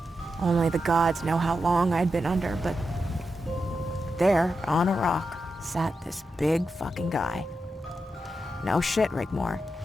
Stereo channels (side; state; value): both; normal; correlation 0.88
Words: Only the gods know how long I'd been under, but there, on a rock, sat this big fucking guy. No shit, Rigmor.